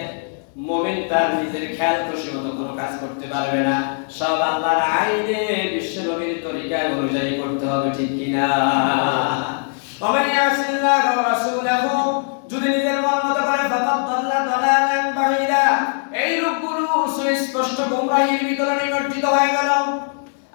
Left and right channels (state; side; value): silent; right; 60 dB below the other